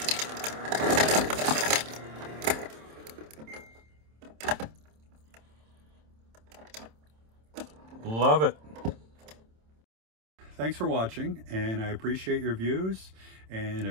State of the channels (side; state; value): left; late; 27 ms